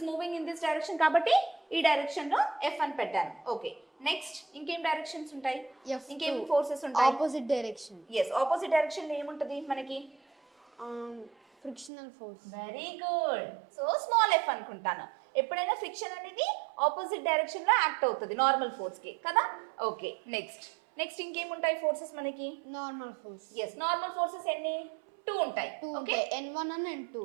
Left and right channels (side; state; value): left; drops out; at 11.9 s